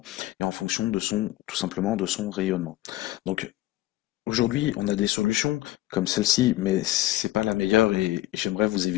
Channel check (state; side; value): quieter; right; 16.3 dB